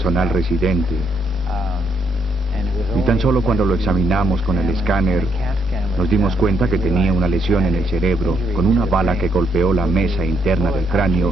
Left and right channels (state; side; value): normal; both; correlation 0.74